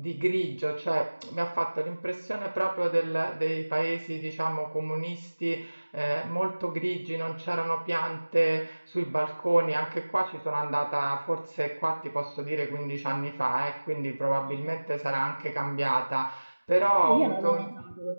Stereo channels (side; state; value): both; inverted; correlation -1.00